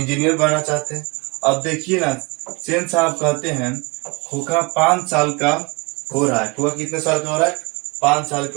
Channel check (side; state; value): left; quieter; 28.0 dB